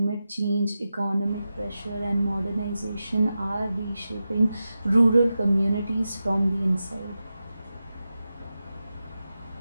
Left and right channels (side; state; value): both; inverted; correlation -0.92